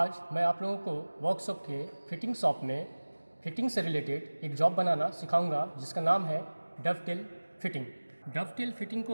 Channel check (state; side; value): inverted; both; correlation -1.00